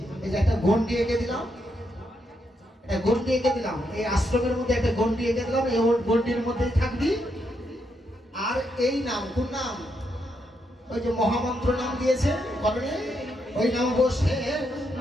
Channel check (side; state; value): both; normal; correlation 0.80